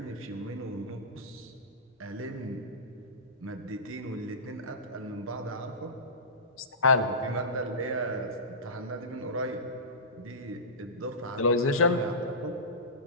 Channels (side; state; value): both; normal; correlation -0.19